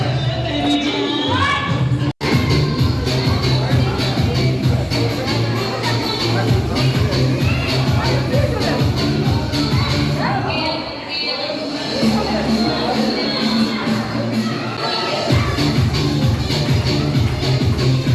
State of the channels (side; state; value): both; identical; correlation 1.00